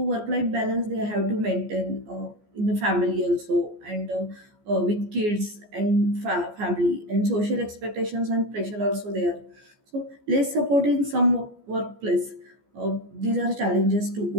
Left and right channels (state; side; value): late; left; 14 ms